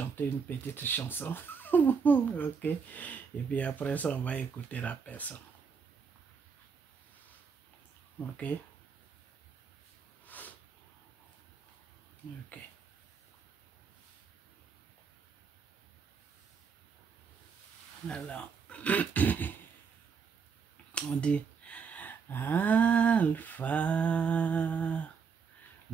une petite chanson. Ok. Et puis après ça, on va écouter la personne. Ok. Ok. Alors, on dit Alpha,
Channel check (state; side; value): quieter; left; 5.9 dB